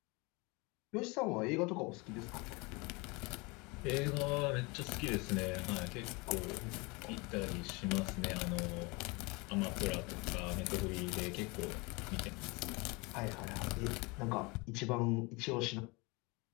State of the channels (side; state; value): right; quieter; 27.0 dB